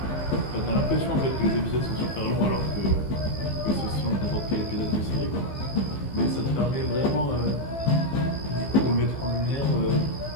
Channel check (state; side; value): late; right; 15 ms